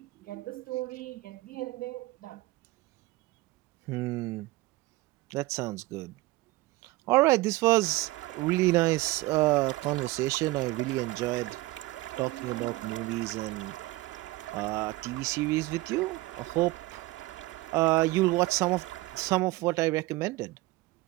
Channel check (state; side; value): quieter; left; 19.8 dB